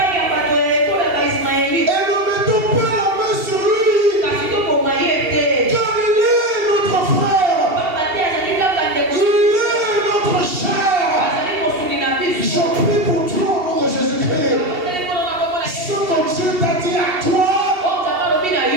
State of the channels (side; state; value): left; late; 2.7 ms